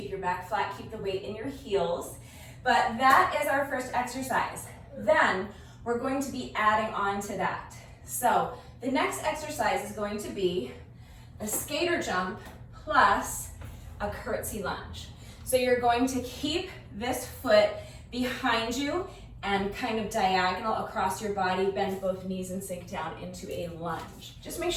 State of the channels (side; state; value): both; identical; correlation 1.00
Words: your back flat, keep the weight in your heels. But that is our first exercise. Then we're going to be adding on to that. So the next exercise is going to be a skater jump plus a curtsey lunge. So you're going to keep this foot behind you and kind of diagonal across your body, bend both knees and sink down into a lunge. Just make